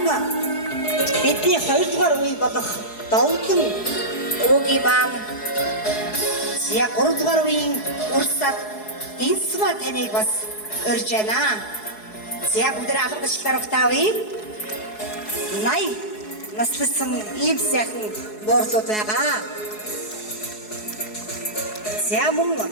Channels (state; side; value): late; right; 4.7 ms